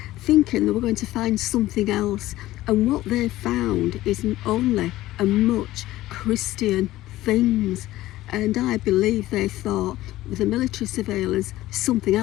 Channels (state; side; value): quieter; right; 16.0 dB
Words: thinking they were going to find something else, and what they found is only and much Christian things. And I believe they thought with the military surveillance something